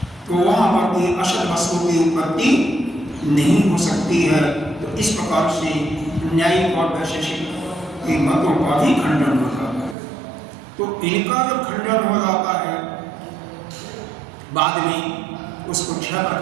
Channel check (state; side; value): drops out; left; at 10.0 s